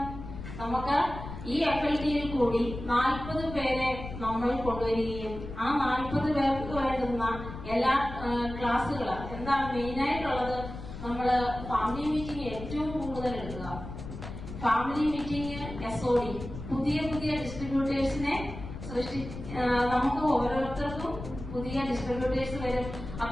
നമുക്ക് ഈ FLDയിൽ കൂടി 40 പേരെ നമ്മൾ കൊണ്ടുവരികയും ആ 40 പേർക്ക് വേണ്ടുന്ന എല്ലാ ക്ലാസ്സുകൾ എന്താണ് മെയിനായിട്ടുള്ളത്? നമ്മള് ഫാമിലി മീറ്റിംഗ് ഏറ്റവും കൂടുതൽ എടുക്കുക. ഫാമിലി മീറ്റിംഗ്, SOD, പുതിയ ഡിസ്ട്രിബ്യൂട്ടേഴ്സിനെ നമുക്ക് ഓരോരുത്തർക്കും പുതിയ ഡിസ്ട്രിബ്യൂട്ടേഴ്സ് വരും.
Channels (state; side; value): noise; left; rumble, 10 dB below the sound